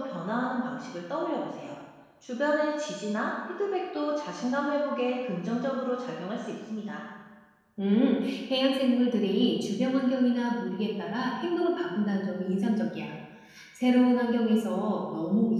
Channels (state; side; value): identical; both; correlation 1.00